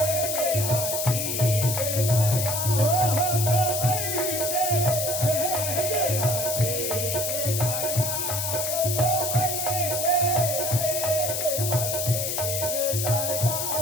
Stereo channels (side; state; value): left; noise; hiss, 1 dB below the sound